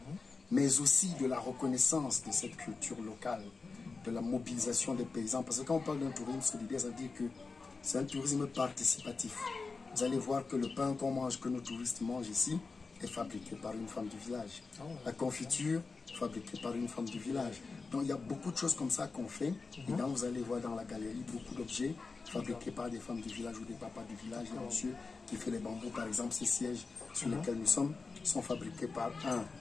mais aussi de la reconnaissance de cette culture locale, de la mobilisation des paysans. Parce que quand on parle d'un tourisme solidaire, ça veut dire que c'est un tourisme participatif. Vous allez voir que le pain qu'on mange, que nos touristes mangent ici, est fabriquée par une femme du village. Ah ouais. La confiture, fabriquée par une femme du village. Donc il y a beaucoup de choses comme ça qu'on fait. Et donc vous allez voir dans la galerie beaucoup d'objets fabriqués par des femmes du village ou des papas du village. Il y a un monsieur qui fait les bambous, par exemple, ces sièges sur lesquels nous sommes sont fabriqués par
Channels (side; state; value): right; quieter; 4.3 dB